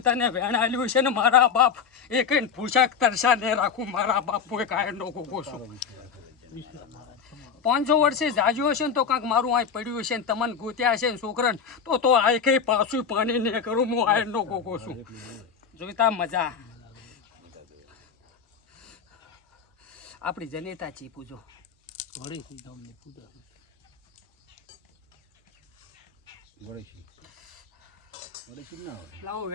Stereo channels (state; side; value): quieter; right; 6.5 dB